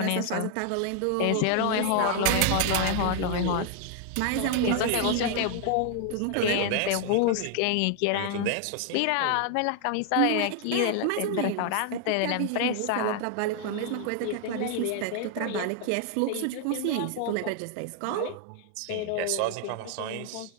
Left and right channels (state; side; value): different; both; correlation 0.00